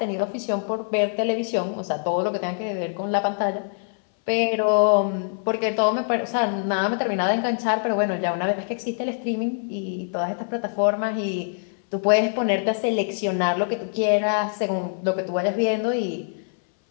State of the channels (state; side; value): silent; right; 61 dB below the other